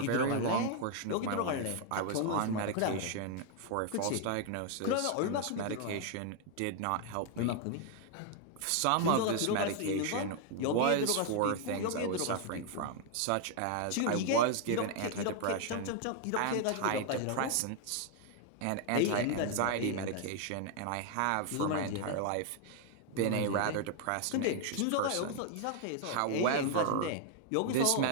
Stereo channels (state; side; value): different; both; correlation 0.00